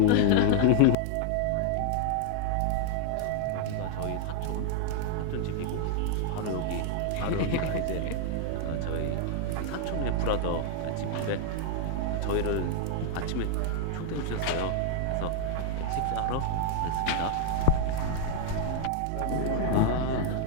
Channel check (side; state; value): both; different; correlation 0.00